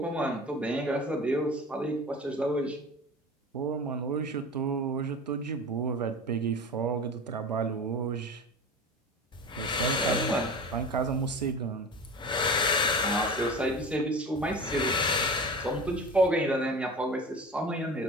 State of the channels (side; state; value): both; normal; correlation 0.33